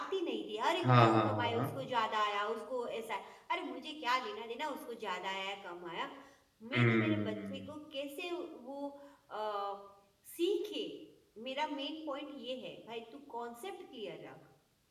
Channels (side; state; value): both; identical; correlation 1.00